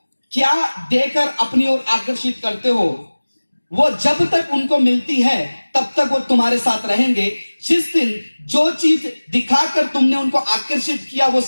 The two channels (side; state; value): both; inverted; correlation -1.00